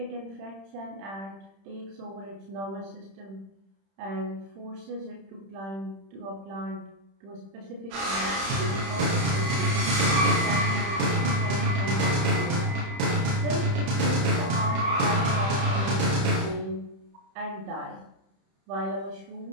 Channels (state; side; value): late; left; 31 ms